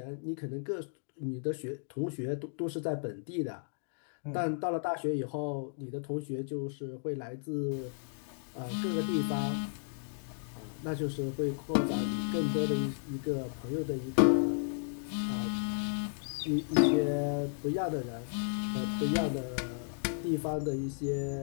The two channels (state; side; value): silent; right; digital silence